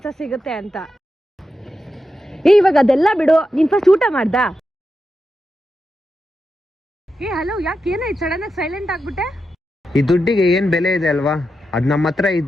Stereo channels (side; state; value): both; normal; correlation 0.88